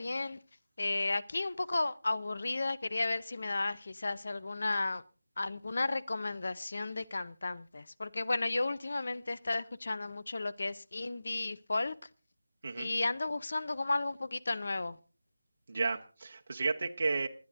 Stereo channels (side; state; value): both; inverted; correlation -0.96